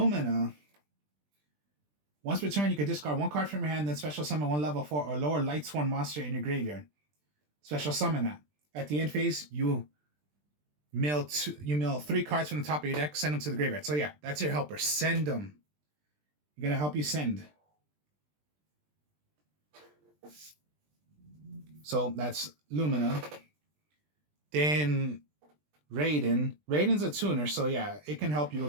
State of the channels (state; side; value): late; left; 20 ms